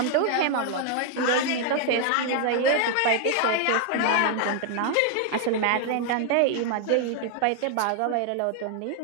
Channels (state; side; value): different; both; correlation 0.00